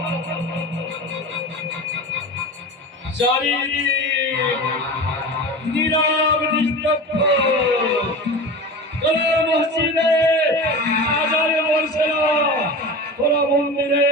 নীরব নিস্তব্ধ কোন মসজিদে আজান বলছে না, কোন মন্দিরে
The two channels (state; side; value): normal; both; correlation 0.30